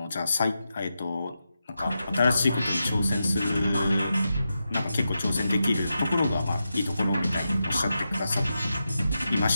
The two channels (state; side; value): inverted; both; correlation -0.88